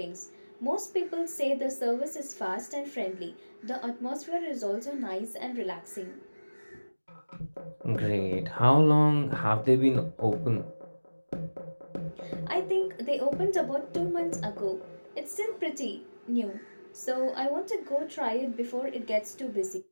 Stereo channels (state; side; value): inverted; both; correlation -1.00